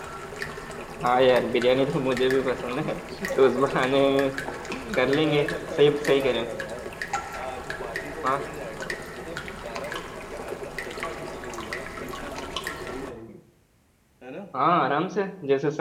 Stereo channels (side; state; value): both; identical; correlation 1.00